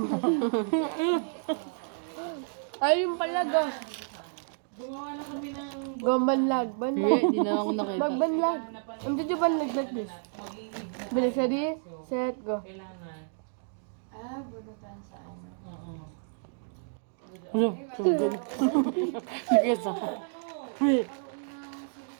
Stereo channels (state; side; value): silent; left; digital silence